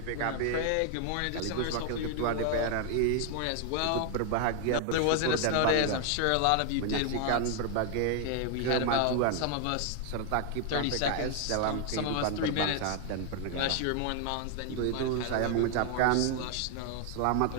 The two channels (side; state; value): both; different; correlation 0.00